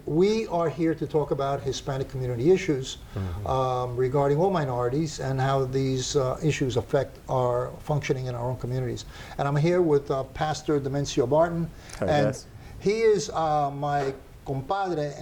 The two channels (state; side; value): identical; both; correlation 1.00